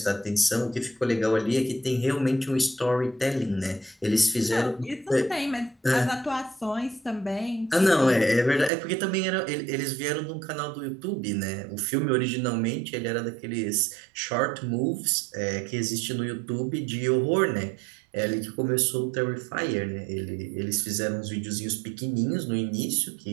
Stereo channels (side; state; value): left; drops out; at 8.7 s